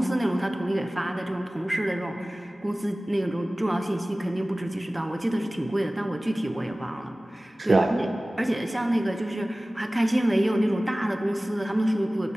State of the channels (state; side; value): normal; both; correlation 0.98